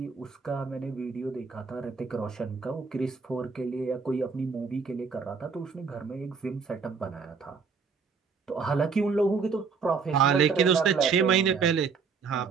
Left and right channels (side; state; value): left; quieter; 5.4 dB